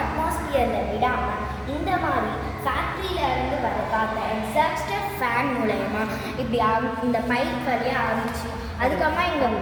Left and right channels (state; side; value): identical; both; correlation 1.00